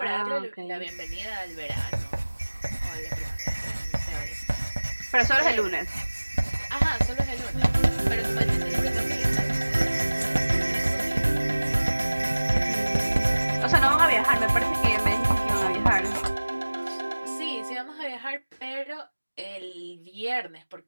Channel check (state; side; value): inverted; both; correlation -1.00